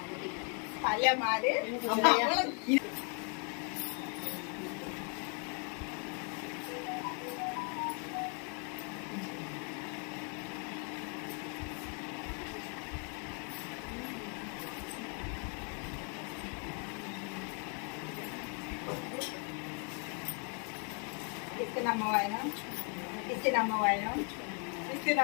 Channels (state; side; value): quieter; right; 38.4 dB